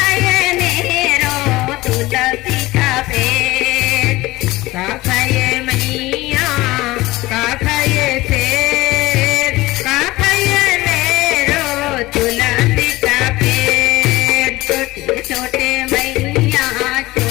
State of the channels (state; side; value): quieter; right; 19.2 dB